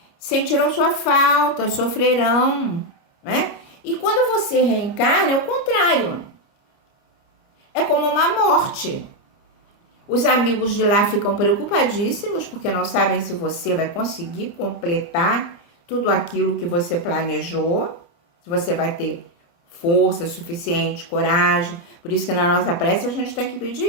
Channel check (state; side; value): late; right; 29 ms